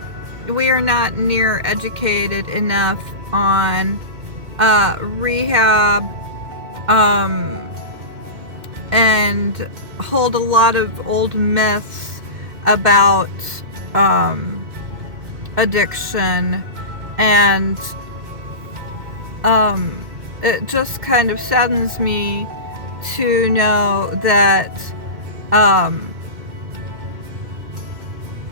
we are not near educated enough on rehab and hold a lot of old myths about addiction, and it just kind of saddens me to know that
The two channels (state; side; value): late; left; 2.1 ms